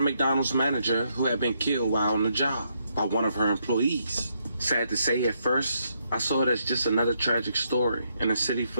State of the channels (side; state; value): both; inverted; correlation -0.76